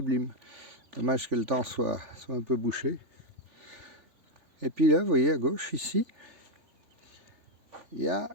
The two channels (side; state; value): left; late; 3.5 ms